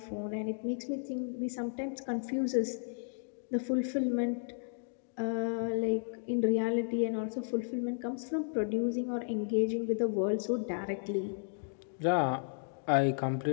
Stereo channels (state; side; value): silent; right; digital silence